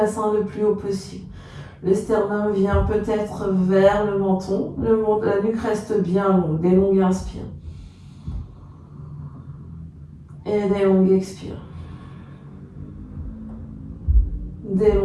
le plus haut possible. Le sternum vient peut-être vers le menton. La nuque reste bien longue. Des longues inspires. Et des longues expires. Des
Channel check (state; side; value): identical; both; correlation 1.00